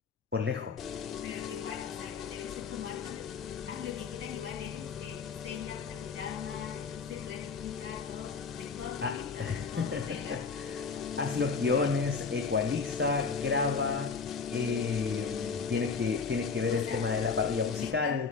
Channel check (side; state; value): right; quieter; 5.2 dB